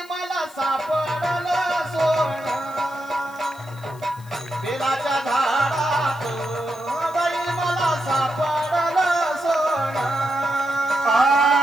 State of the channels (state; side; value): noise; left; hiss, 24 dB below the sound